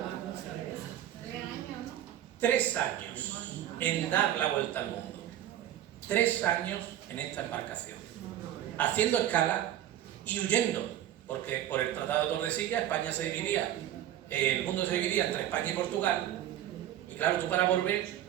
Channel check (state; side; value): quieter; left; 12.0 dB